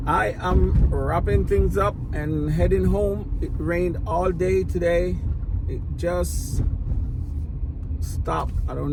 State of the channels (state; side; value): identical; both; correlation 1.00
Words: I am wrapping things up and heading home. It rained all day today. It just stopped. I don't